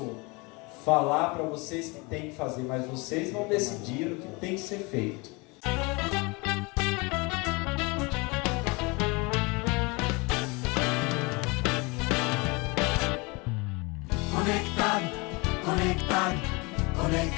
falar para vocês que tem que fazer, mas vocês vão decidir o que tem que ser feito. Conectado, conectado,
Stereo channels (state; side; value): quieter; right; 27.3 dB